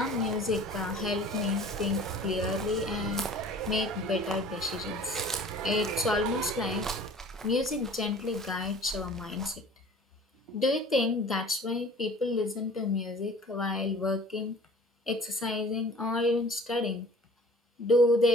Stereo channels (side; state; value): both; normal; correlation 0.47